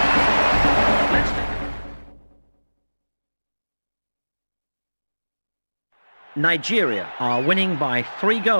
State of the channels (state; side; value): inverted; both; correlation -1.00